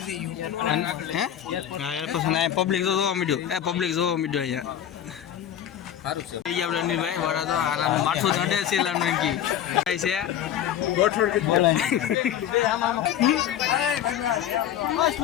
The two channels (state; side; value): quieter; right; 10.4 dB